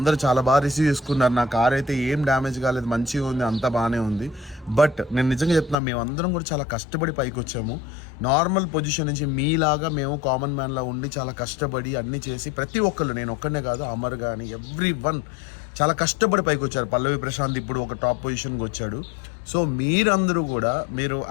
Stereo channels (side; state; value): right; drops out; at 5.8 s